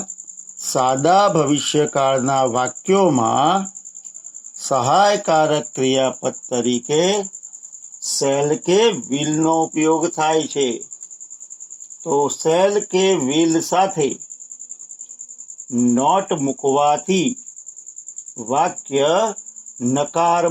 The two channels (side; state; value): both; identical; correlation 1.00